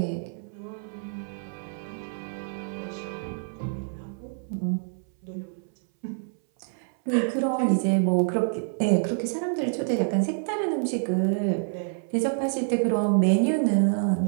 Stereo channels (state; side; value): silent; left; 60 dB below the other